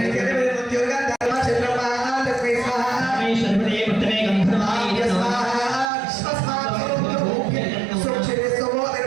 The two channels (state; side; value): drops out; left; at 5.9 s